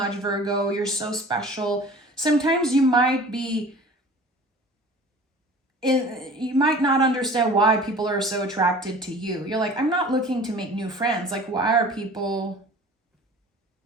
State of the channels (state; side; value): normal; both; correlation 0.43